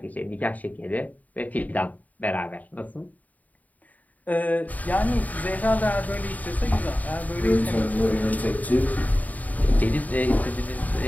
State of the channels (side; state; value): right; late; 0.075 ms